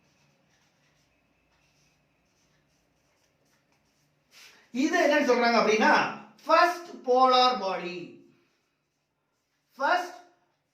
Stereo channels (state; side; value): identical; both; correlation 1.00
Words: இது என்ன சொல்றாங்க அப்படின்னா first polar body. First